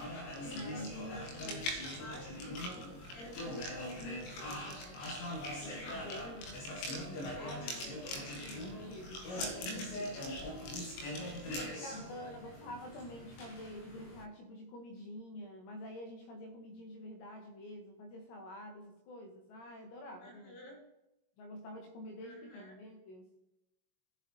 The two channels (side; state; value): right; late; 22 ms